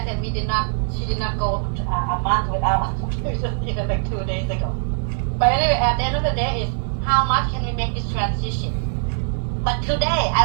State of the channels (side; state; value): left; silent; 64 dB below the other